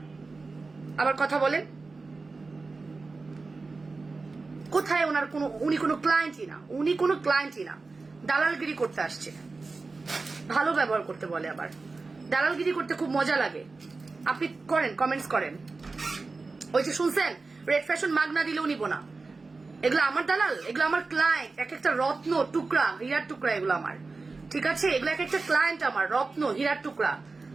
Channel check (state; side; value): quieter; left; 3.9 dB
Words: আবার কথা বলেন। কোথায় ওনার উনি কোনো ক্লায়েন্টই না, দালালগিরি করতে আসছে। ভালো ব্যবহার করতে বলে, আবার দালালগিরি করতে খুব মজা লাগে। আপনি করেন, কমেন্টস করেন। ওই যে শুনছেন রেড ফ্যাশন মাগনা দিলেও নিব না। এগুলো আমার দালাল, এগুলো আমার ক্লায়েন্ট। এক একটা রত্ন টুকরা, হীরার টুকরা এগুলো আমার। ঠিক আছে, এগুলো এক একটা ক্লায়েন্ট আমার, রত্ন হীরার টুকরা।